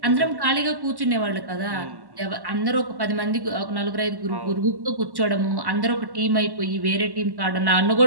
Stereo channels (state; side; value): late; left; 1.1 ms